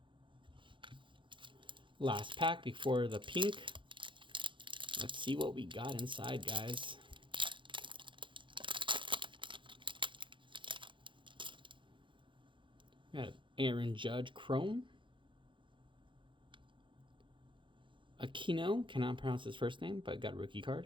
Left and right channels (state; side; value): late; left; 0.24 ms